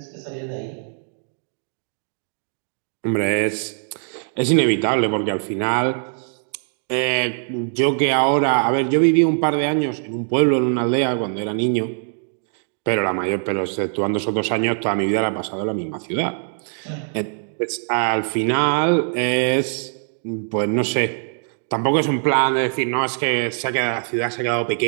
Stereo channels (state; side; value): silent; left; digital silence